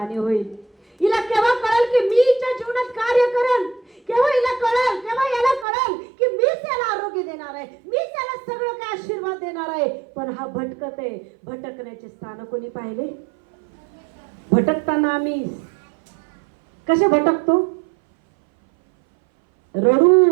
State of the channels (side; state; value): left; drops out; at 5.7 s